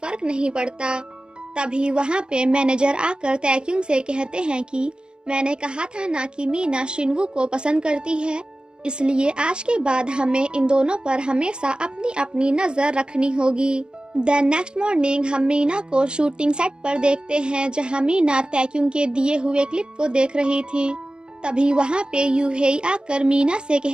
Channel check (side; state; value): left; late; 0.050 ms